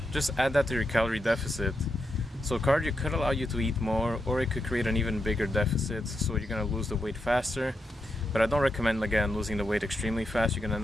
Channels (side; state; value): both; normal; correlation 0.84